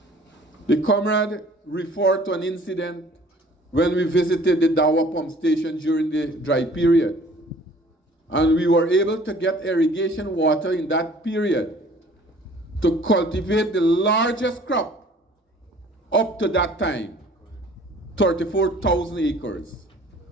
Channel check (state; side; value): normal; both; correlation 0.52